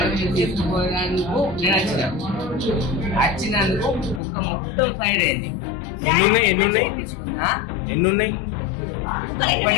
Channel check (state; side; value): drops out; right; at 4.2 s